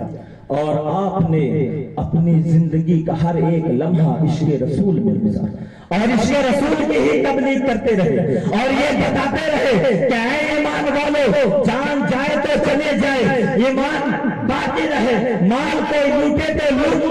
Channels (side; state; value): both; identical; correlation 1.00